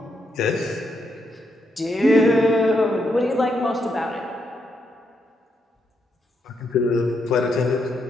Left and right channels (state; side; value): normal; both; correlation 0.79